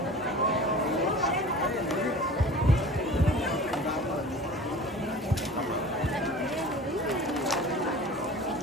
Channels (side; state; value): both; normal; correlation 0.40